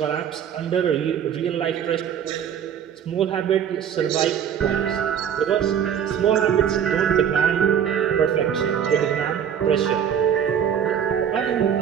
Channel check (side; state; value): left; quieter; 8.6 dB